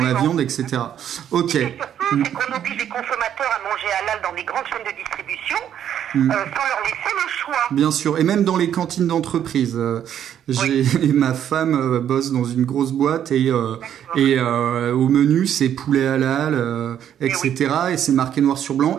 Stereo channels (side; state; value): left; quieter; 9.9 dB